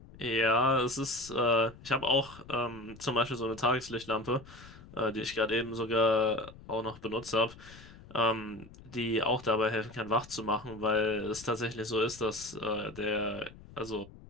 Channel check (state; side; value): noise; left; rumble, 19 dB below the sound